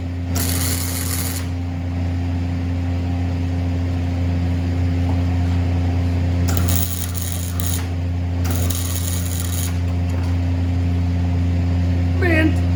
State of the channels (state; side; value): identical; both; correlation 1.00